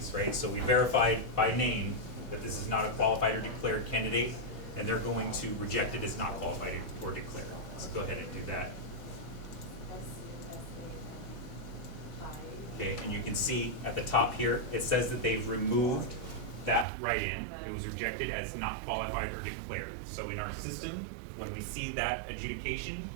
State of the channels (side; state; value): left; drops out; at 16.9 s